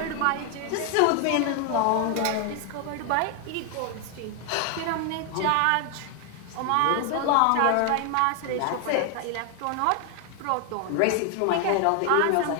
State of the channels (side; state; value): both; different; correlation 0.00